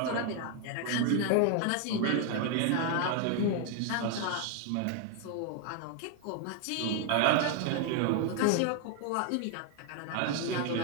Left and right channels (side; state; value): both; different; correlation 0.00